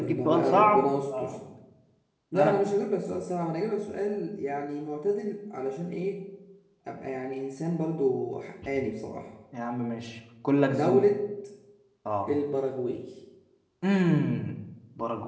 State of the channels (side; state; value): both; identical; correlation 1.00